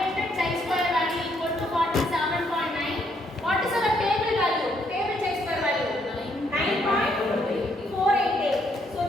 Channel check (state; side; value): normal; both; correlation 0.72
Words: chi-square value equal to 47.9. What is our table value? Table chi-square value 9.488. So,